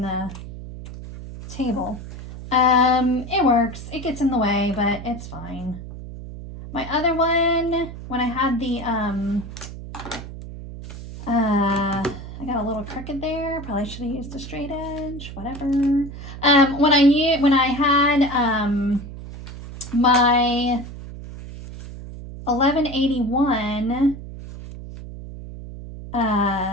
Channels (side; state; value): right; noise; hum, 12 dB below the sound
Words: the table. It works. It gets in the way, but it's fine. My other one, when I had the, I got a little crooked there. Probably should have used a straight edge, whatever. When I had, my 1181,